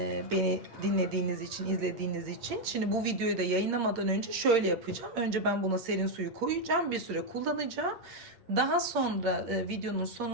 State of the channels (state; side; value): late; left; 8.6 ms